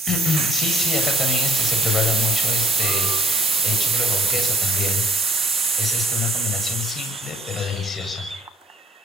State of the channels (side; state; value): both; normal; correlation 0.61